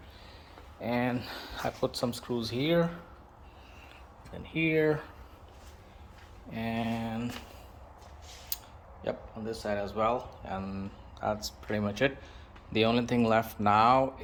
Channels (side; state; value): both; identical; correlation 1.00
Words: and I put some screws here and here, and yep, on this side as well. And that's pretty much it. The only thing left now